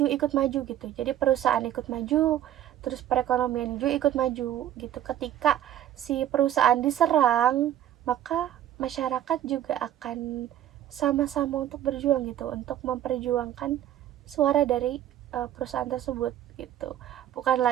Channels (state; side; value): quieter; left; 11.6 dB